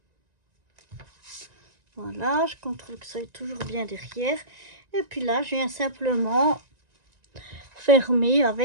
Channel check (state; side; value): late; left; 1.9 ms